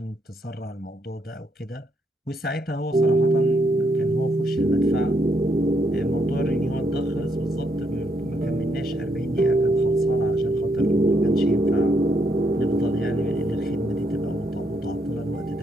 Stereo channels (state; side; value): normal; both; correlation 0.75